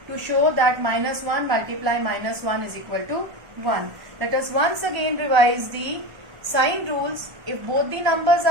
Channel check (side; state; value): left; late; 1.3 ms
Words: to show that minus 1 multiply minus 1 is equal to 1. Let us once again revise the sign rules. If both the numbers